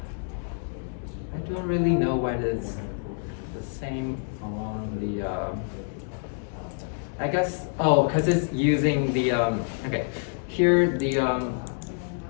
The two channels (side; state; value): right; silent; 60 dB below the other